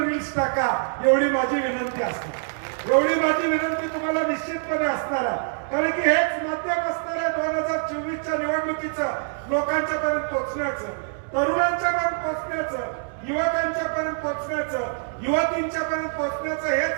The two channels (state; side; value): silent; left; digital silence